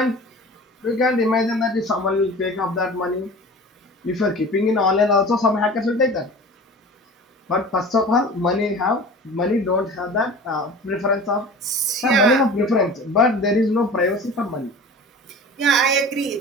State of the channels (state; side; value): normal; both; correlation 0.38